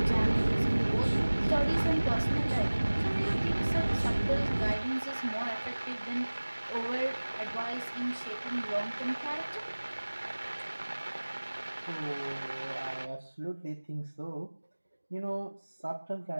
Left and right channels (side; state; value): both; inverted; correlation -1.00